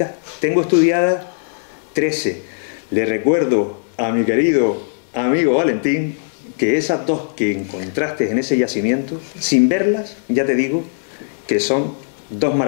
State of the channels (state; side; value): silent; right; digital silence